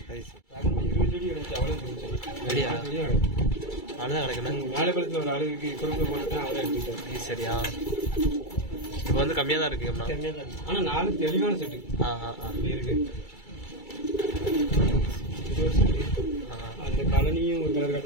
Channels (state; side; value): late; right; 2.3 ms